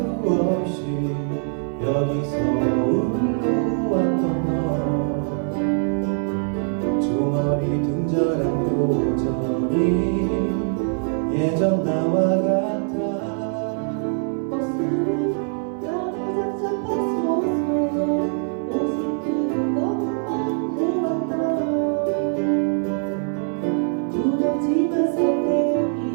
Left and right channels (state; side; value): silent; left; 62 dB below the other